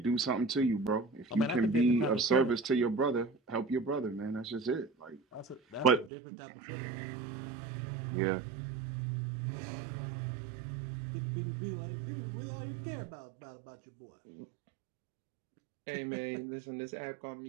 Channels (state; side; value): drops out; left; at 6.1 s